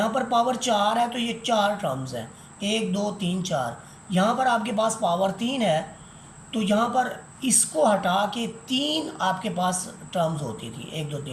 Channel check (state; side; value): identical; both; correlation 1.00